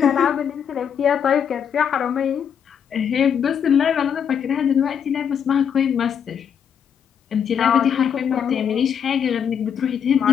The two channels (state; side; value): quieter; right; 7.9 dB